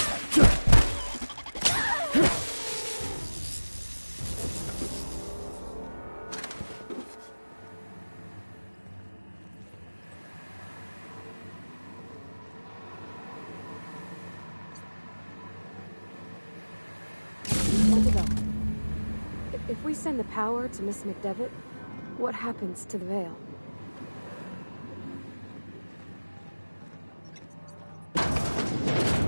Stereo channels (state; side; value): inverted; both; correlation -1.00